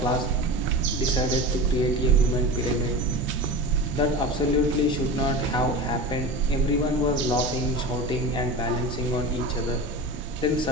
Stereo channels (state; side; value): normal; both; correlation 0.29